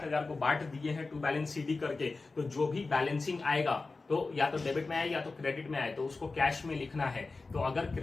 को बांट दिए हैं टू बैलेंस सीडी करके, तो जो भी बैलेंसिंग आएगा तो या तो डेबिट में आए या तो क्रेडिट में आए, तो उसको कैश में लिखना है। तो अगर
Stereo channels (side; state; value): right; quieter; 3.7 dB